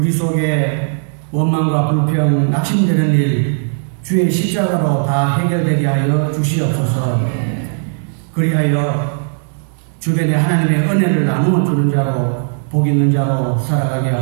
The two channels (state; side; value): silent; left; 67 dB below the other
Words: 속에 원망과 불평, 낙심되는 일 주의 십자가로 다 해결되게 하여 주시옵소서. 그리하여 주변에 하나님의 은혜를 나누어 주는 자로 복 있는 자로 살아가게